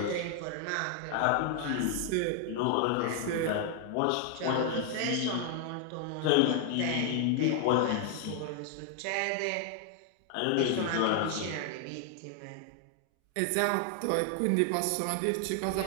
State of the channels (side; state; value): both; different; correlation 0.00